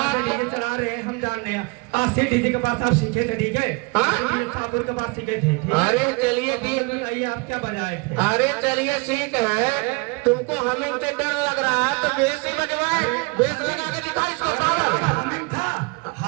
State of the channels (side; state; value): left; quieter; 29.2 dB